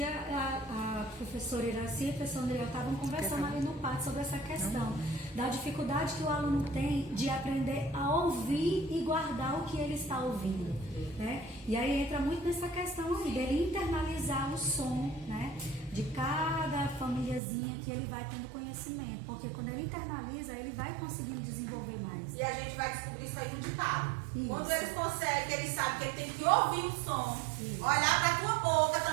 a professora Iraci e a professora Andriel estavam conversando ali no pátio sobre essa questão da dificuldade que o aluno tem de aprender a ouvir e guardar o que ele está ouvindo, né? E aí entra muito nessa questão aí, dele internalizar o som, né? De cada famíliazinha que ele vai tendo conhecimento, porque quando ele internaliza, ele vai conseguindo desenvolver mais. E a gente vai descobrir isso aí no ditado. Isso. Quando eles conseguem, eles sabem que ele tem que ouvir o som, olhar para a tua boca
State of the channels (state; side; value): drops out; left; at 17.4 s